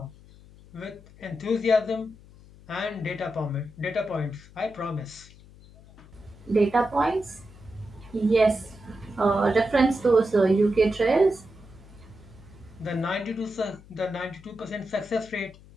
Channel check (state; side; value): noise; left; hum, 22 dB below the sound